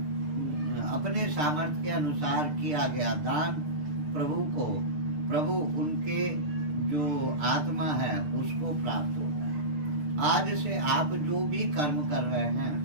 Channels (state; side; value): late; left; 6.7 ms